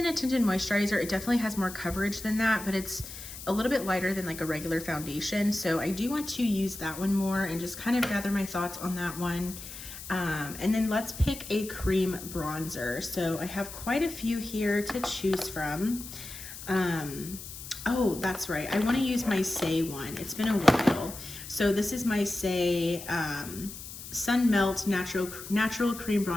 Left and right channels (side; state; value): left; noise; hiss, 12 dB below the sound